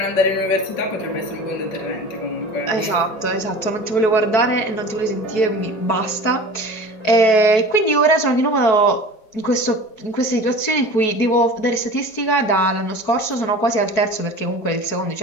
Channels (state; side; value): late; right; 4.6 ms